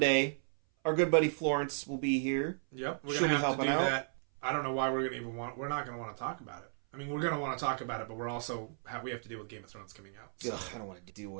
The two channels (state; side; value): silent; left; 55 dB below the other